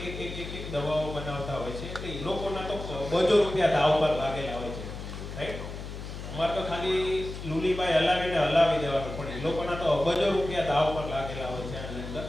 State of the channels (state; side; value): noise; left; hum, 9 dB below the sound